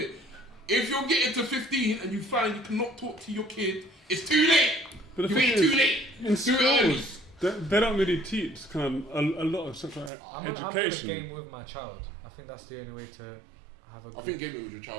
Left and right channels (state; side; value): drops out; left; at 10.1 s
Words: If you're getting to 15 and you find you cannot talk to your kid, it's too late. But the You thing ain't is, too late. in Do it early. schools, they don't really teach kind of a lot of sexual I'm gonna education. game with my child. I think that's the only way to have a I good. think gaming with your